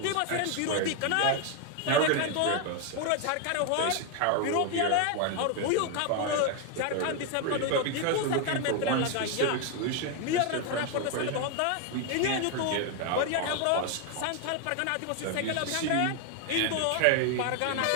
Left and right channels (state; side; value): different; both; correlation 0.01